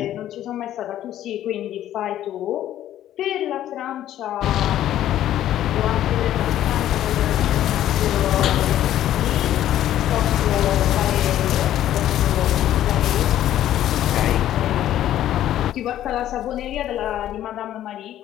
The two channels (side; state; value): right; quieter; 12.3 dB